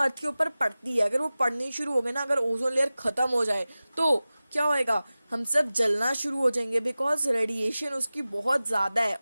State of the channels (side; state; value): both; inverted; correlation -0.96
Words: के ऊपर पड़ती है, अगर वो पड़नी शुरू हो गई ना, अगर ओजोन लेयर खत्म हो जाए तो क्या होएगा, हम सब जलना शुरू हो जाएंगे, बिकॉज रेडिएशन उसकी बहुत ज्यादा है।